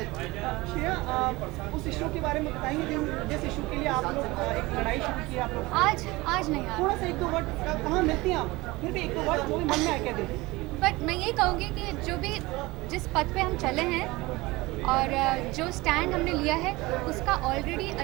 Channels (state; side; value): quieter; left; 21.4 dB